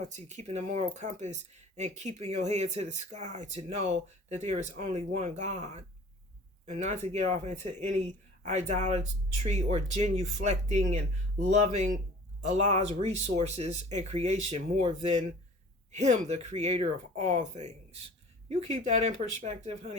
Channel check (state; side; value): normal; both; correlation 0.46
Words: keeping the moral compass and keeping your head to the sky to know that there is only one God. And not to get off into any idolatry or genuflecting and loving Allah's resources and creation more than Him, the creator of all things. You keep that in perspective,